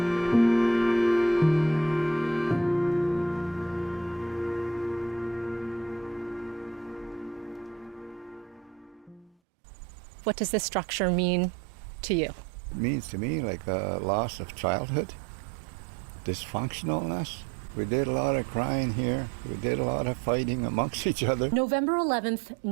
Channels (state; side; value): drops out; left; at 9.3 s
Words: does this structure mean to you? It means to me like a loss of childhood, dysfunctionalness. We did a lot of crying here. We did a lot of fighting amongst each other. November 11th,